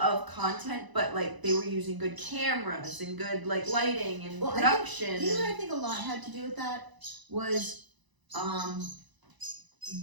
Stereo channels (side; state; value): left; late; 1.0 ms